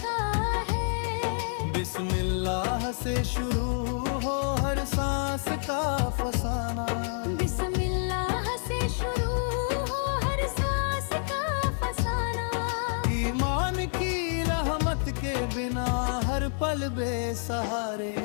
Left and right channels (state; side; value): silent; right; 59 dB below the other